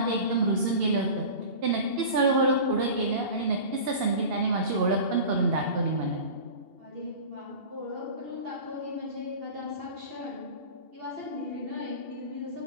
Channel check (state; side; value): late; left; 2.7 ms